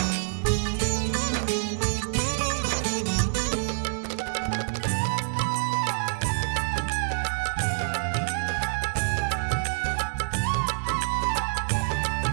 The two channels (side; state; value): left; silent; digital silence